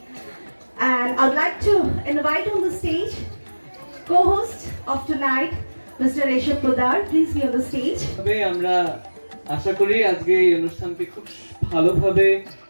And I'd like to invite on the stage co-host of tonight, Mr. Rishabh Podar. Please be on the stage. তবে আমরা আশা করি আজকে এই অনুষ্ঠানকে খুব ভালোভাবে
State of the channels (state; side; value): inverted; both; correlation -1.00